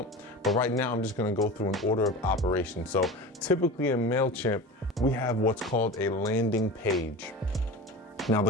But right now, I'm just going to go through an order of operation. So typically in Mailchimp, we have what's called a landing page. Now,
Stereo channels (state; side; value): normal; both; correlation 0.32